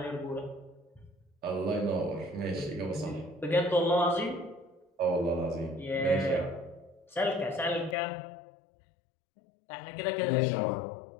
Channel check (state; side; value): drops out; right; at 8.0 s